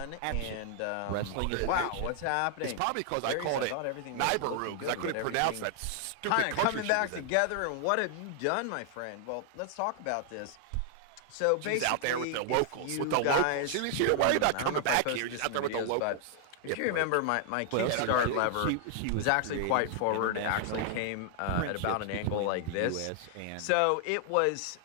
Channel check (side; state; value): both; different; correlation 0.00